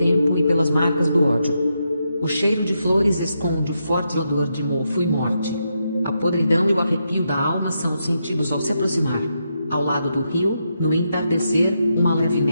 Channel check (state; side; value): inverted; both; correlation -0.83